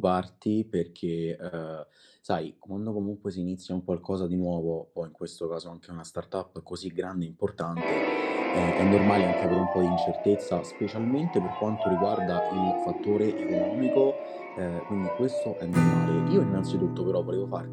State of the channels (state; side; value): identical; both; correlation 1.00